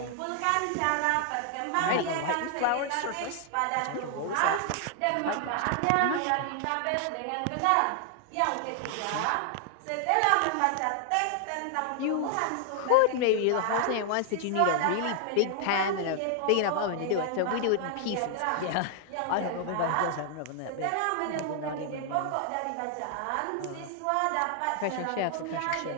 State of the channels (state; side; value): different; both; correlation 0.00